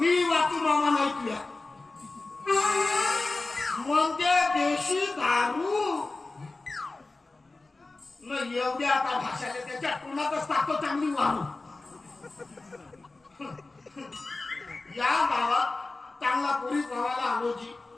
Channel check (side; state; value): right; quieter; 3.4 dB